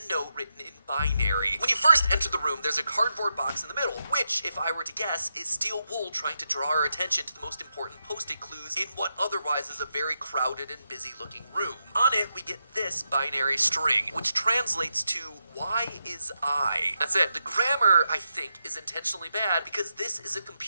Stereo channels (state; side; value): inverted; both; correlation -0.85